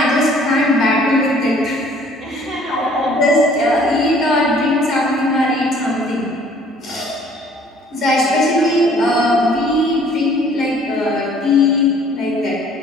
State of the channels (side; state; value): both; normal; correlation 0.56